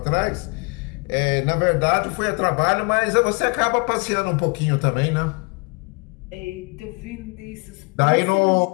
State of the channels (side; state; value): right; quieter; 31.8 dB